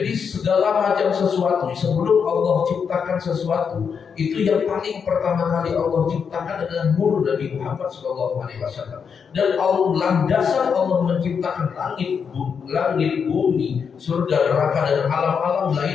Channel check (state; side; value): quieter; right; 6.5 dB